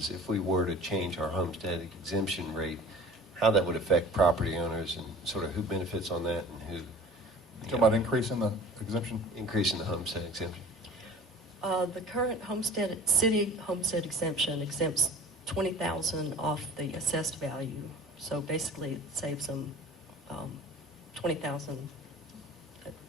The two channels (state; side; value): normal; both; correlation 0.44